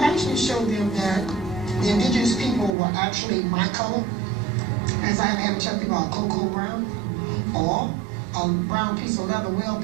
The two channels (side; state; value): left; drops out; at 2.8 s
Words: show them that the indigenous people were actually my color, as I have had to tell people about cocoa brown or a brown piece of leather well